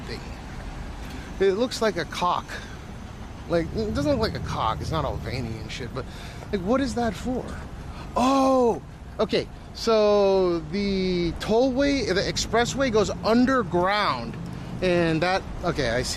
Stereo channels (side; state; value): both; identical; correlation 1.00